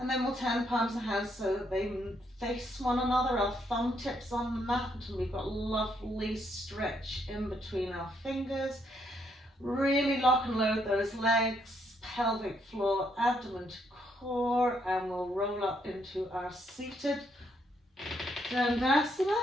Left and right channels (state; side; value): normal; both; correlation 0.74